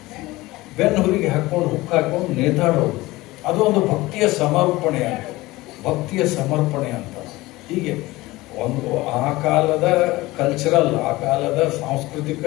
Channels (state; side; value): quieter; right; 19.6 dB